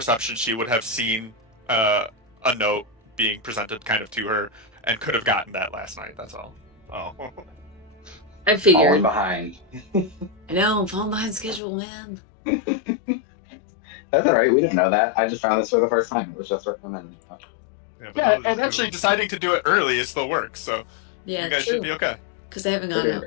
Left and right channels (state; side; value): drops out; right; at 11.6 s